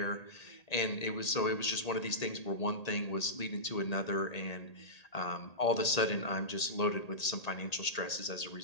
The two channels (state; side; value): late; right; 1.8 ms